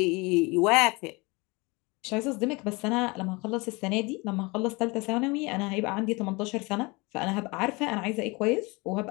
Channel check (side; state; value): right; quieter; 25.9 dB